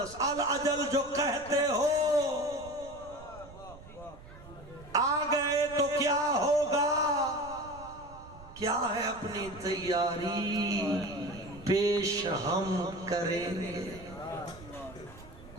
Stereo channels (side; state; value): right; noise; rumble, 18 dB below the sound